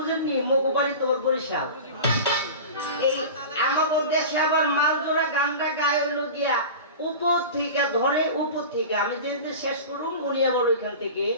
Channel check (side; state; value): both; inverted; correlation -0.32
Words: মগু বাড়ি তোমার বরিশাল, এই আমাকে দেশে আবার মালজোড়া গানটা গায়ে হইল গিয়া উপর থেকে ধরে, উপর থেকে আমি যেতে শেষ করুন উনি আবার ওইখান থেকে